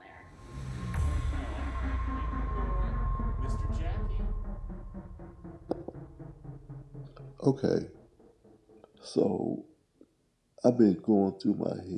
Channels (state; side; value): identical; both; correlation 1.00